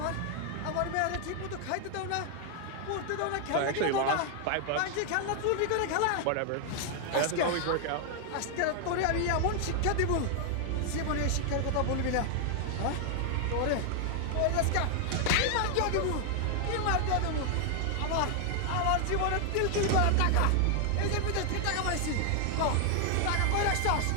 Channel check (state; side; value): different; both; correlation 0.00